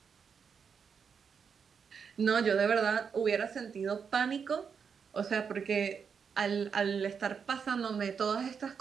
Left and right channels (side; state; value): left; quieter; 6.4 dB